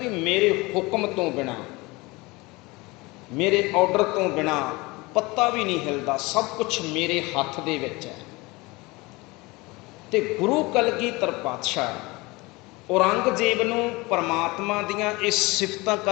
ਮੇਰੇ ਹੁਕਮ ਤੋਂ ਬਿਨਾਂ, ਮੇਰੇ ਆਰਡਰ ਤੋਂ ਬਿਨਾਂ ਪੱਤਾ ਵੀ ਨਹੀਂ ਹਿਲਦਾ, ਸਭ ਕੁਛ ਮੇਰੇ ਹੱਥ ਦੇ ਵਿੱਚ ਹੈ। ਤੇ ਗੁਰੂ ਕਲਗੀਧਰ ਪਾਤਸ਼ਾਹ ਔਰੰਗਜ਼ੇਬ ਨੂੰ ਪਰਮਾਤਮਾ ਦੀਆਂ ਇਹ ਸਿਫਤਾਂ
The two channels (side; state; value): right; quieter; 23.5 dB